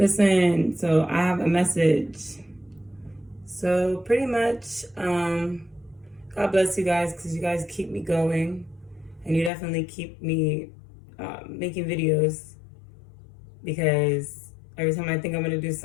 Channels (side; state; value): right; drops out; at 9.5 s